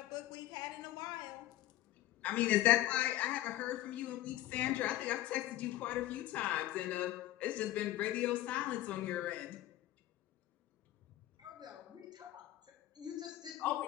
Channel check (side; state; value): right; quieter; 14.9 dB